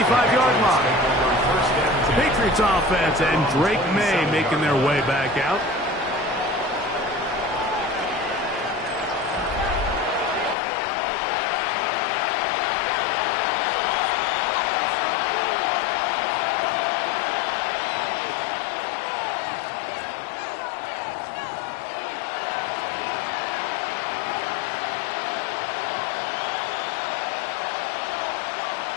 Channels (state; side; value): drops out; right; at 10.6 s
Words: line. Patriots offense and Drake May making their way back out.